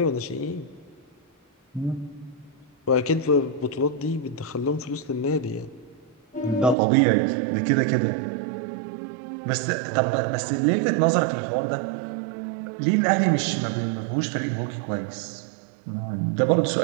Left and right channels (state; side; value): drops out; left; at 6.8 s